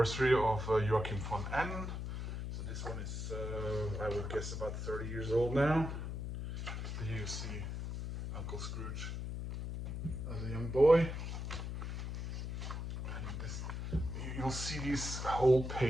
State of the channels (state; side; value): noise; left; hum, 4 dB below the sound